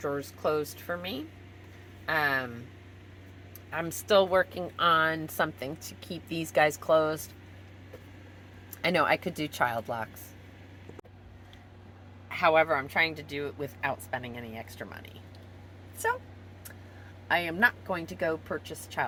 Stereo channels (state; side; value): identical; both; correlation 1.00